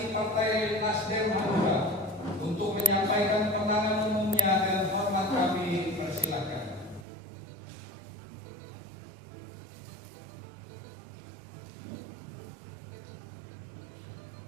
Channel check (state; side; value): drops out; left; at 7.1 s